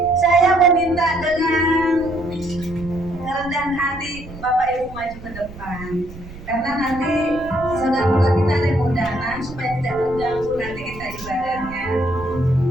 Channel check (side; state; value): right; noise; rumble, 15 dB below the sound